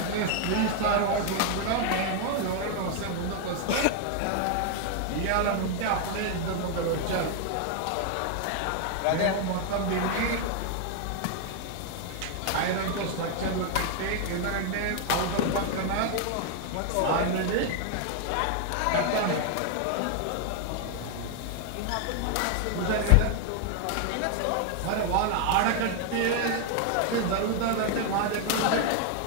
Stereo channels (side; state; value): both; different; correlation 0.00